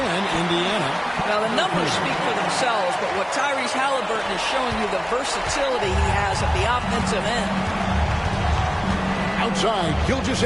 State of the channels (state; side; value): identical; both; correlation 1.00